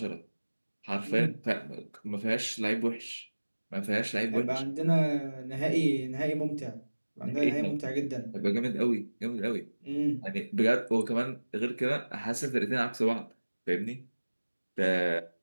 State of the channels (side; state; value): both; inverted; correlation -1.00